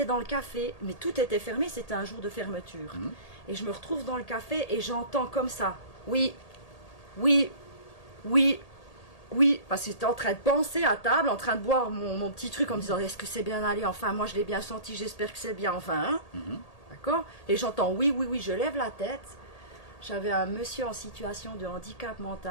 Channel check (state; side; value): late; right; 1.8 ms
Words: dans le café, mais tout était fermé, c'était un jour de fermeture. Mhm. Et je me retrouve dans le café et j'entends comme ça. Oui, oui, oui, oui. Parce que j'étais en train de penser à table, en train de boire mon petit truc en me disant est-ce que c'est bien allé? Enfin, moi je l'ai bien senti, j'espère que c'est bien. Enfin, hein? Mhm. D'accord? Et j'entends oui, oui, oui, je lève la tête. J'avais un monsieur en situation de handicap